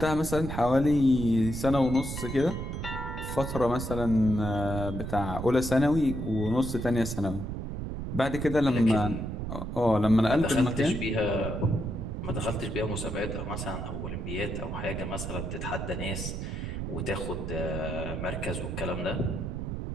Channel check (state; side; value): noise; right; rumble, 5 dB below the sound